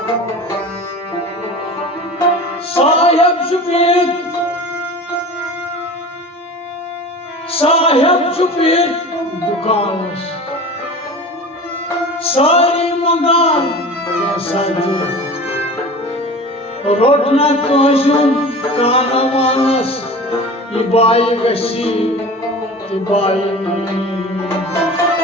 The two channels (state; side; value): normal; both; correlation 0.37